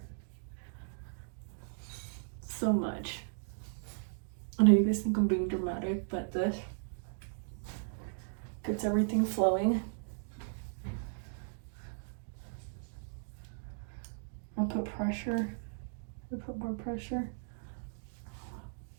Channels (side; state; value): left; silent; digital silence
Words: so much. I know you guys think I'm being dramatic, but this gets everything flowing. I'll put pressure. I'll put more pressure.